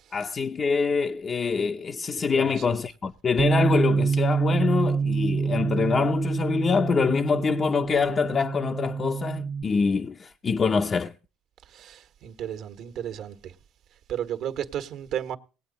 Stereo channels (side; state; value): both; normal; correlation 0.82